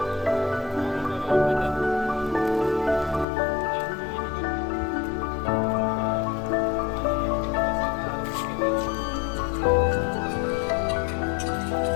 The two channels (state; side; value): drops out; right; at 3.2 s